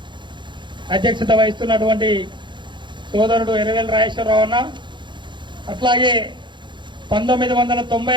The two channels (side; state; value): left; late; 0.23 ms